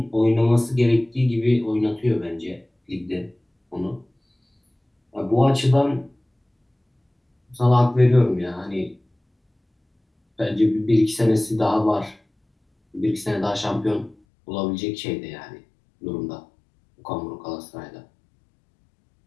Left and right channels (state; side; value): drops out; right; at 14.2 s